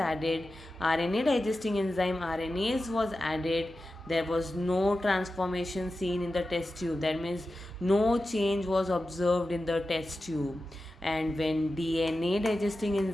RNA digesting enzyme RNase was added, there was no transformation seen in the test tube. That means no change was observed in the test tube. And when DNA digesting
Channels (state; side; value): normal; both; correlation 0.93